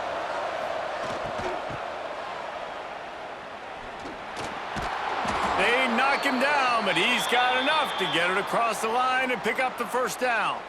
They knock him down, but he's got enough to get it across the line and pick up the first down.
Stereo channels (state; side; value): identical; both; correlation 1.00